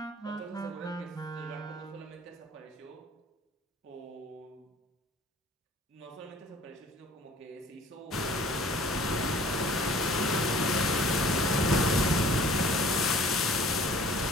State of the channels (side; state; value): both; normal; correlation 0.50